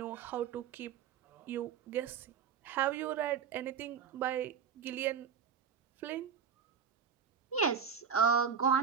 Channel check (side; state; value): left; quieter; 7.0 dB